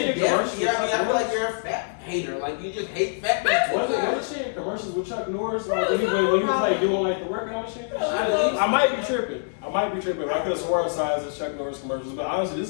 you're in definitely- commercials? yeah, I with mean, I Chuck feel like Norris? you're a fat hater. Like, you just hate fat people. Wasn't she in commercials with Chuck Norris? Like, when he was like doing like the workout shit? Yeah. I might be tripping. I could have sworn I saw it as Chuck Norris commercials, but honestly, this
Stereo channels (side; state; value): right; silent; digital silence